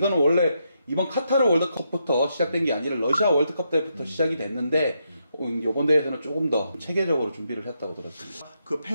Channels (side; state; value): both; inverted; correlation -0.81